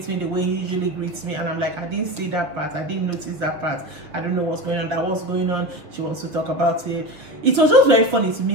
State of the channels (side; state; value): left; late; 6.8 ms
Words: me the way he usually greets me. And I'm like, I didn't see that part. I didn't notice that part. I don't know what's going on. That was going on. She wants to talk about it. It was just very funny to